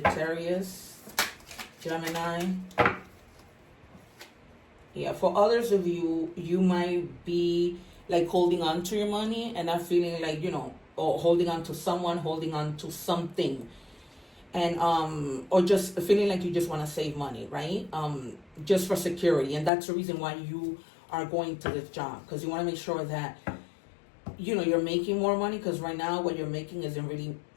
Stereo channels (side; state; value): right; drops out; at 19.7 s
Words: Gemini. Yeah, for others of you, you might be like holding on to your money and not feeling like, you know, or holding on to someone, holding on to something. And or just feeling like you just want to save money, right? Just for security. And that's the reason why you are going to this job, because you want to make sure that, you know, you're making more money, because right now what you're making isn't really,